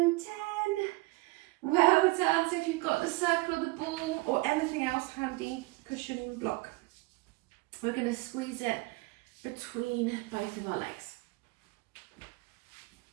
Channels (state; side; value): quieter; left; 23.7 dB